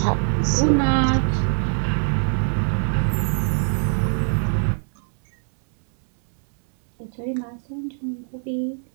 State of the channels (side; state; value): left; silent; 63 dB below the other